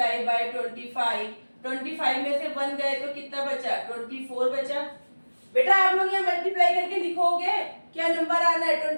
बाय 25 में से 1 गए तो कितना बचा 24 बचा। बेटा आप लोग यहाँ मल्टीप्लाई करके लिखोगे क्या नंबर आना है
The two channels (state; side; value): inverted; both; correlation -1.00